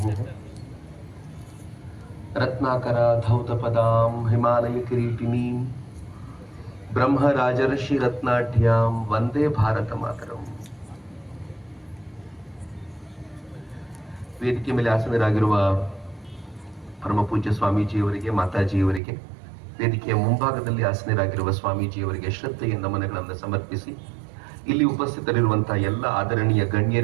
रत्नाकराधौतपदां हिमालयकिरीटिनीं ब्रह्मराजर्षिरत्नाढ्यां ವಂದೇ ಭಾರತ ಮಾತರಂ. ವೇದಿಕೆ ಮೇಲೆ ಆಸನರಾಗಿರುವ ಪರಮಪೂಜ್ಯ ಸ್ವಾಮೀಜಿಯವರಿಗೆ, ಮಾತಾಜಿಯವರಿಗೆ, ವೇದಿಕೆಯ ಮುಂಭಾಗದಲ್ಲಿ ಆಸನರಾಗಿರುವ ಸ್ವಾಮೀಜಿಯವರಿಗೆ ಶ್ರದ್ಧೆಯ ನಮನಗಳನ್ನು ಸಮರ್ಪಿಸಿ, ಇಲ್ಲಿ ಉಪಸ್ಥಿತರಿರುವಂತಹ ಎಲ್ಲ ಆದರಣೀಯ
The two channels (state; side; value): drops out; left; at 19.0 s